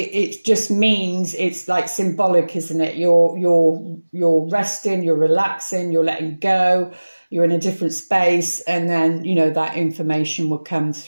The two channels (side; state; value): both; inverted; correlation -1.00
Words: just means, it's like symbolic, isn't it? You're resting, you're relaxing, you're letting go, you're in a different space, and then, you know, that information will come